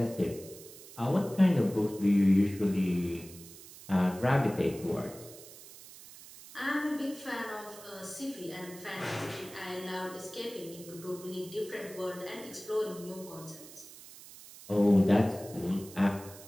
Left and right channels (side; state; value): right; noise; hiss, 17 dB below the sound